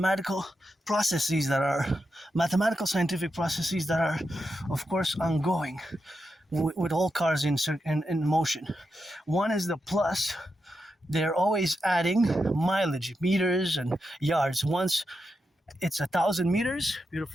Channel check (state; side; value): normal; both; correlation 0.87